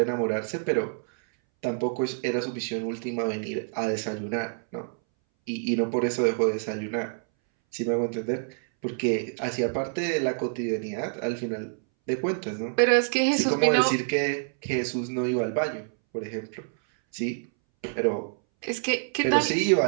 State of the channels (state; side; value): silent; left; 60 dB below the other